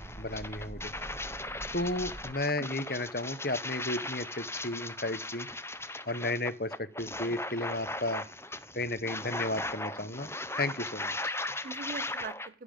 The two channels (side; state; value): both; normal; correlation 0.16